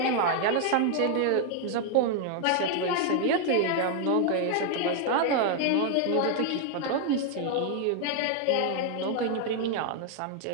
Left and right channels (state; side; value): different; both; correlation 0.00